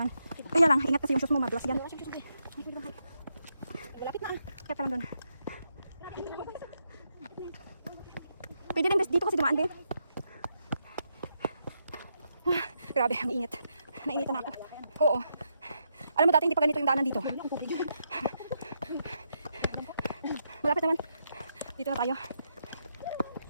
Kaya lang, ingat kasi yung sus mo, madulas yan. Malapit na. Kaya pa lang doon. Pwede din dito kasi dumaan din. Grabe, ang init. Nainitan na ako. Oo. Alam mo dati hindi pa ganito yung daanan dito. Malapit naman. Dito na tayo.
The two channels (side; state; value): both; inverted; correlation -0.82